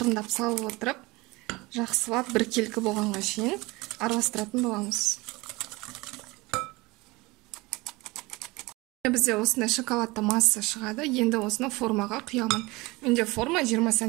салып отырып, жақсылап біркелкі болғанға шейін араластыратын боламыз. Бізде осындай шоколадты масса шығады. Енді осыны формаға құямын. Менде форма 20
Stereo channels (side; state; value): left; quieter; 23.0 dB